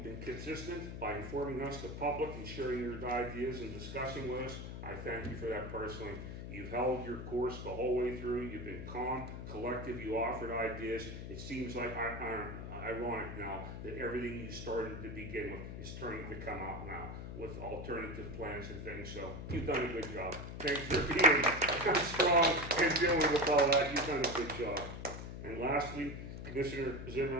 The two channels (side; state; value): left; noise; hum, 8 dB below the sound